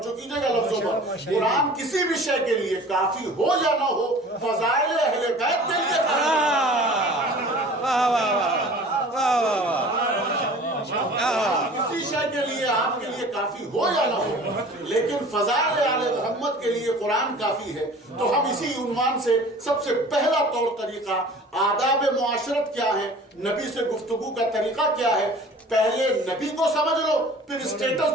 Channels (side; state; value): both; normal; correlation 0.45